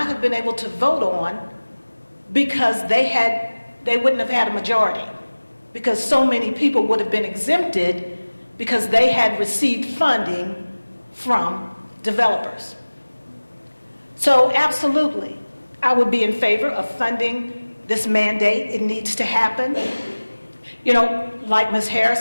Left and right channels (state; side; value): inverted; both; correlation -1.00